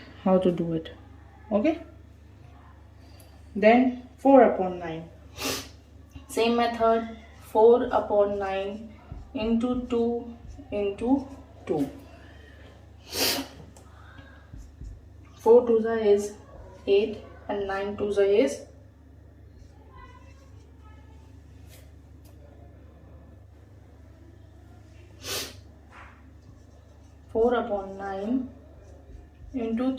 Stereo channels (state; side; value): identical; both; correlation 1.00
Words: how to do it. Okay, then 4 upon 9. Same method, 4 upon 9 into 2 into 2. 4 2s is 8 and 9 2s is 4 upon 9 into